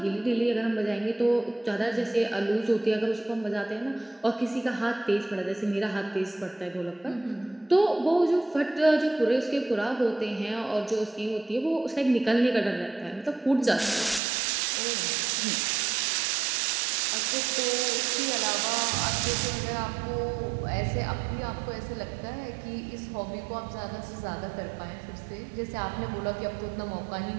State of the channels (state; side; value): drops out; left; at 14.2 s